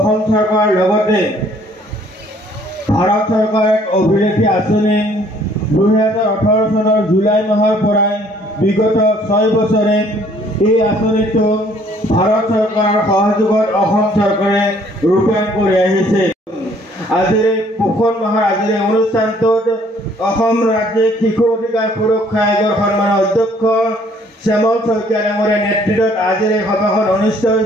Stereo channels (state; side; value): normal; both; correlation 0.60